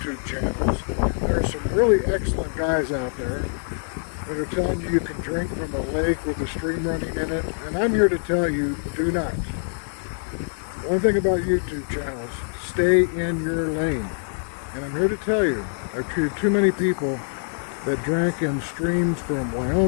channels. There are some really excellent guys out there that are telling you can drink from a lake with a stream running in it. And I'm here to tell you, do not. One thing about YouTube channels, stay in your lane. And I'm here to tell you, I've treated too many people that drank in streams from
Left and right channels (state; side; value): silent; right; 61 dB below the other